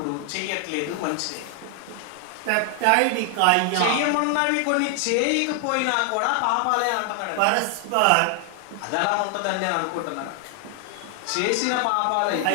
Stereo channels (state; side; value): different; both; correlation 0.00